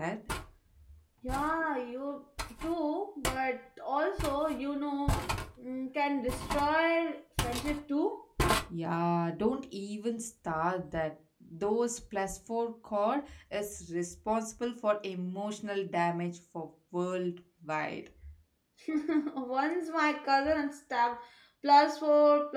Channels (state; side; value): identical; both; correlation 1.00